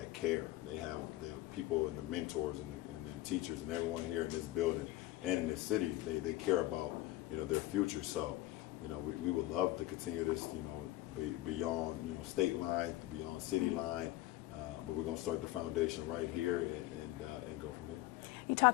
care. They have the people and the mentors and the teachers and everyone here in this building and in this city. They care about their future. So we would love to continue this beyond state line, beyond city line. But we're going to start the foundation right here and go from here. You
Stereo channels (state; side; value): quieter; right; 16.9 dB